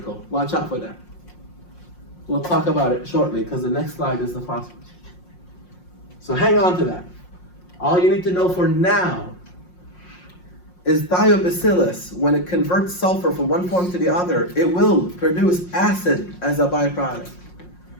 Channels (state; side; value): late; right; 5.6 ms